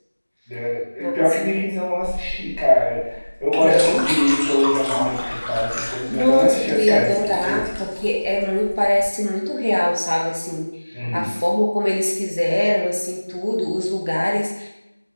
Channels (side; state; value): both; inverted; correlation -1.00